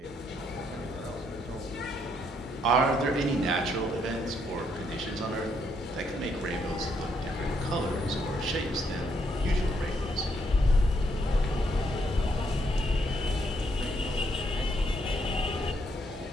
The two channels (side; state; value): both; normal; correlation 0.74